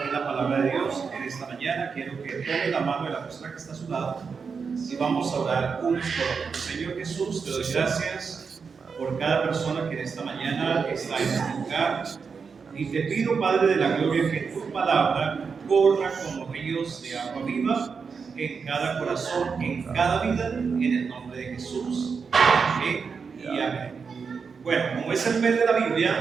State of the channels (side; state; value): left; quieter; 5.5 dB